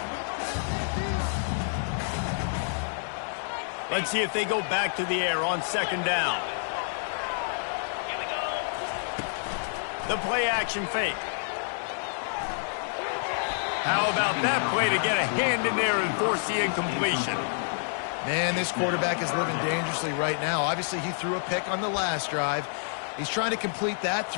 Let's see if they go back to the air on second down. The play action fake. How about that play to get a hand in there and force the incompletion? Man, this quarterback is living dangerously right now. Obviously, he threw a pick on the last drive. He's trying to complete that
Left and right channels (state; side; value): silent; right; digital silence